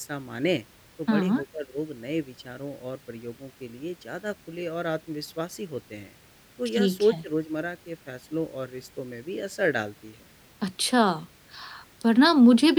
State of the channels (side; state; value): both; identical; correlation 1.00